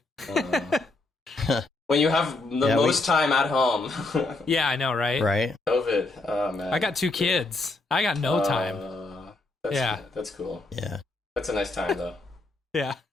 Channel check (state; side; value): quieter; right; 3.2 dB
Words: When you have the most time at home. Yeah, I know, right? Right. COVID. Oh man. I got 2 kids. I got no time. That's cool. Yeah. That's a nice time though. Yeah.